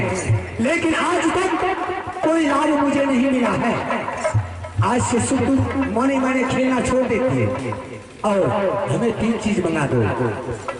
लेकिन आज तक कोई लाभ मुझे नहीं मिला है। आज से सुप्ती मोनी मैंने खेलना छोड़ देती है और हमें तीन चीज मंगा दो।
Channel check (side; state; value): both; identical; correlation 1.00